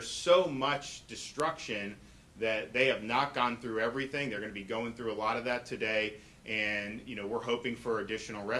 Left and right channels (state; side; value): identical; both; correlation 1.00